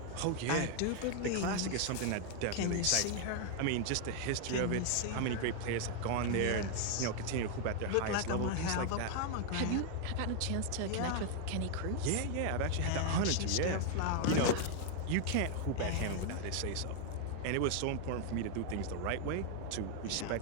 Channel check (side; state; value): both; different; correlation 0.00